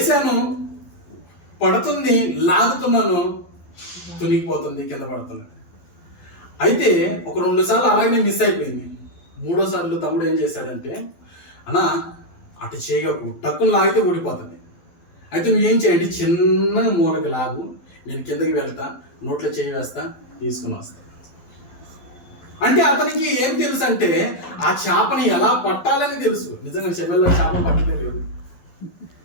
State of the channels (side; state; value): right; late; 12 ms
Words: పడుతుంది, లాగుతున్నాను, తునిగిపోతుంది, కింద పడుతుంది. అయితే ఒక 2 సార్లు అలాగే మిస్ అయిపోయింది. 3వ సార్లు తమ్ముడు ఏం చేశాడంటే, అన్న అటు చేయకు, టక్కును లాగితే ఊడిపోతుంది, అయితే నువ్వేం చేయండి, చిన్న మూలకి లాగు, నేను కిందకి వెళ్తా, నోట్లో చేయి వేస్తా, తీసుకుని వస్తా. అంటే అతనికి ఏం తెలుసు అంటే ఆ చేపని ఎలా పట్టాలని తెలుసు. నిజంగా చెమెల్లో చేప పట్టలే లేదు,